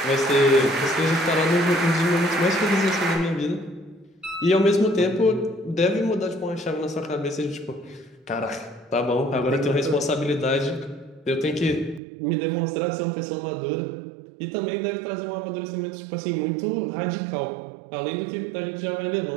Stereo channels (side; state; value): left; drops out; at 12.0 s